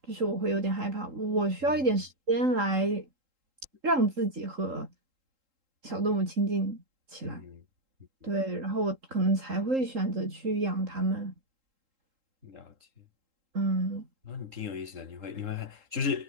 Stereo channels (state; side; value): late; left; 3.8 ms